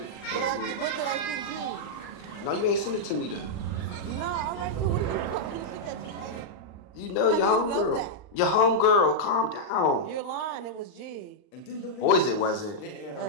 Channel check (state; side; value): late; right; 39 ms